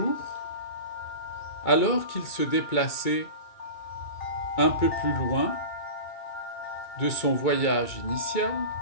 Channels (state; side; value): late; right; 2.2 ms